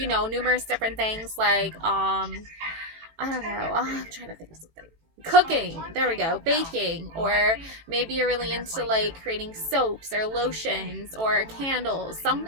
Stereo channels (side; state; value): left; late; 18 ms